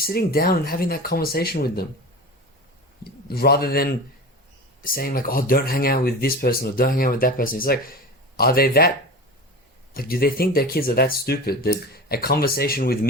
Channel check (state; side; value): normal; both; correlation 0.31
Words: down and having that conversation with them, rather than saying like, oh, don't hang out with this person or don't hang out with that person. It's like, are they that, like, do they think their kids are that stupid that a conversation with